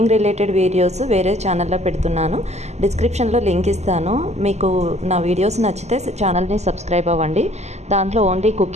related videos వేరే ఛానల్లో పెడుతున్నాను. డిస్క్రిప్షన్లో లింక్ ఇస్తాను. మీకు నా వీడియోస్ నచ్చితే ఛానల్ని సబ్స్క్రైబ్ అవ్వండి. దాంట్లో ఓన్లీ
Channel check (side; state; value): left; late; 0.33 ms